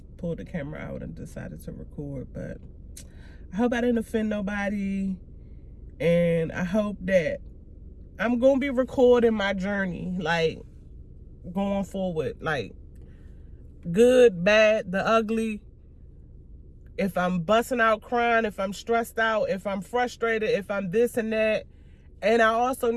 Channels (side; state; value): both; identical; correlation 1.00